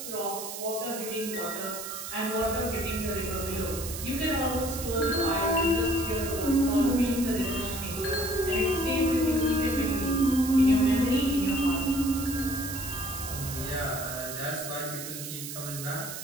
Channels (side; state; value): right; noise; hiss, 8 dB below the sound